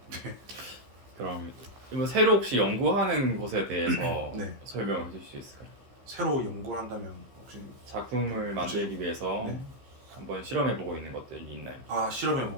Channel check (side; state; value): left; late; 15 ms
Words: 네. 그럼 이번 새로 혹시 연구하는 것에 대해서 네. 설명해 주실 수 있을까요? 새로 연구를 한다면 혹시 작품을 만들기 위해서 네. 한번 실험해 보고 있는 것들이 있나요? 실험해